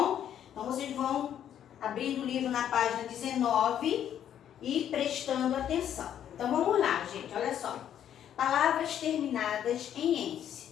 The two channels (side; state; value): right; quieter; 10.0 dB